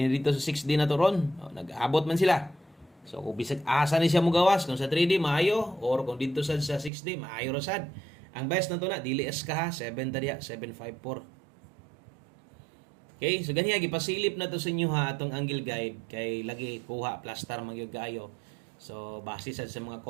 dito sa 6D na to ron nag-abot man sila so kung bisag asa ni siya mogawas kung sa 3D maayo or kung dito sa 6D maayo ra sad ang best na to na dili es ka ha 7 ta diha 754 okay so ganiya gipasilip na to sa inyo ha atong angle guide kay lagi kuha plaster man gyud kaayo. So, base sa mga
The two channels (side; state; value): left; drops out; at 6.9 s